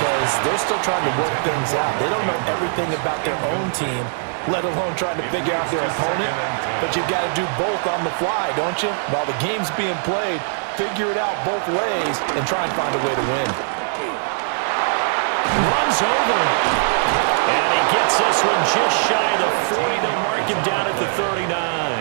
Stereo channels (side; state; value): left; silent; digital silence